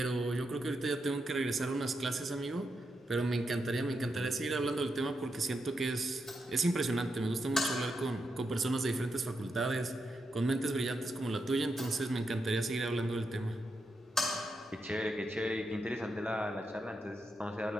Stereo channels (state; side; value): normal; both; correlation 0.84